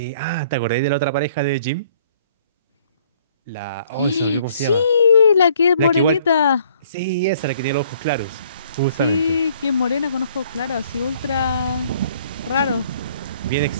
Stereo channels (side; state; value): both; inverted; correlation -0.61